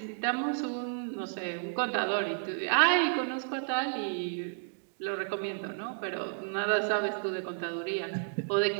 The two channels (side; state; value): left; silent; digital silence